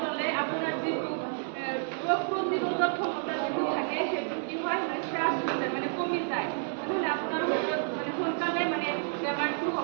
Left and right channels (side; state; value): left; silent; digital silence